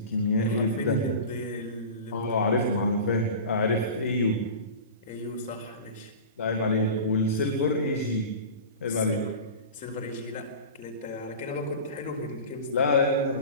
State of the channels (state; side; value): inverted; both; correlation -0.33